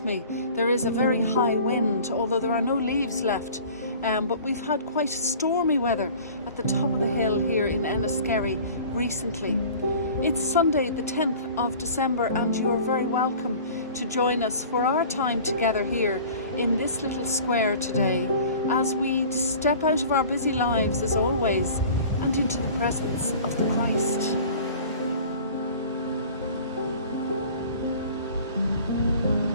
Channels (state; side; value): inverted; both; correlation -0.44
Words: me, there is a very high wind, although there are no leaves left. But we've had quite stormy weather at the top of the hill here in Enniskerry recently. It's Sunday the 10th of December and you're very welcome to join us for our time together here in this little square today as we step out of our busy lives as always and into the presence of the Christ.